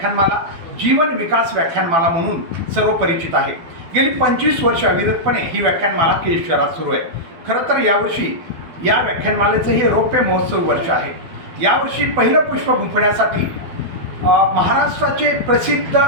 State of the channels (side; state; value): left; late; 12 ms